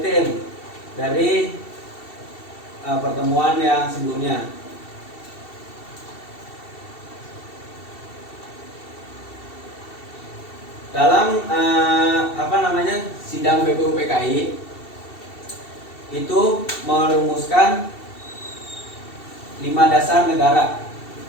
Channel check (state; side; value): late; right; 2.7 ms